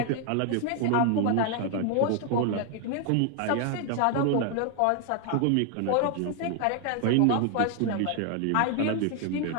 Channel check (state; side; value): different; both; correlation 0.00